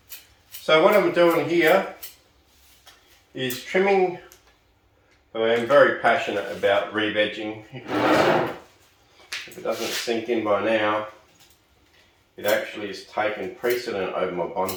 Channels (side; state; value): both; identical; correlation 1.00